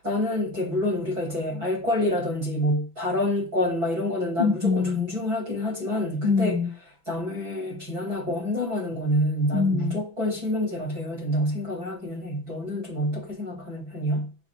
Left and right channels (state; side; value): late; left; 6.0 ms